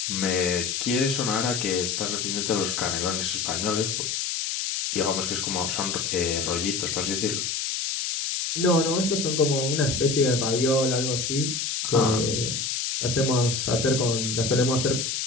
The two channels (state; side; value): noise; left; hiss, 1 dB below the sound